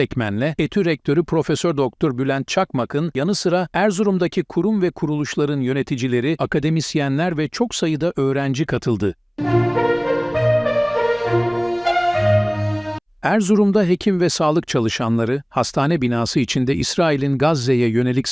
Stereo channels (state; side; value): identical; both; correlation 1.00